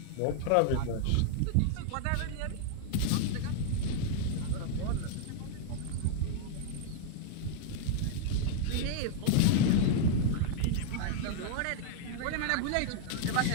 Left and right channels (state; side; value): different; both; correlation 0.00